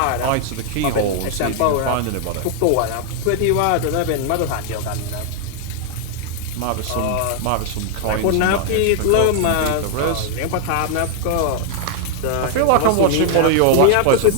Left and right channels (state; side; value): different; both; correlation 0.00